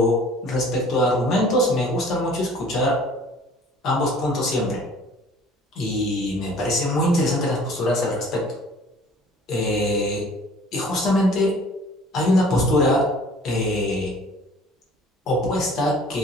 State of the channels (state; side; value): normal; both; correlation 0.50